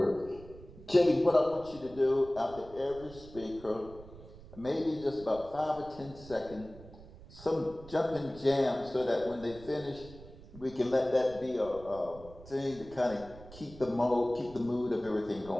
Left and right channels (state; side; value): noise; right; rumble, 18 dB below the sound